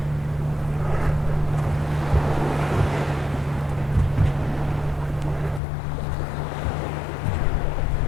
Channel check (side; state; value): right; drops out; at 5.6 s